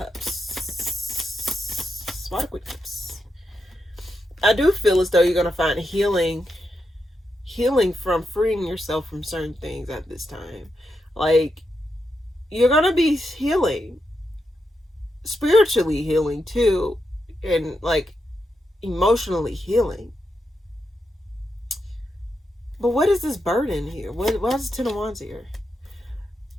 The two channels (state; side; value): normal; both; correlation 0.85